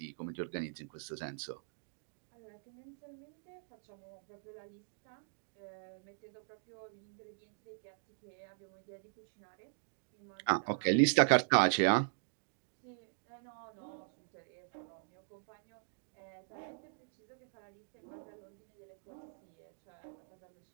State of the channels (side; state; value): left; silent; digital silence